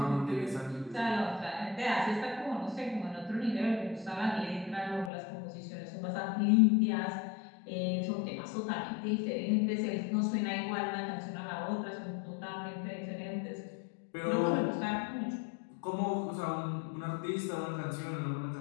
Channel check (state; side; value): drops out; right; at 5.1 s